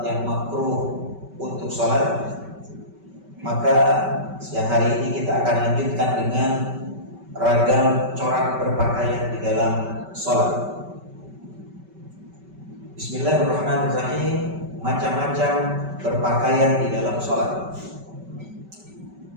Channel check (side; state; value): left; late; 5.2 ms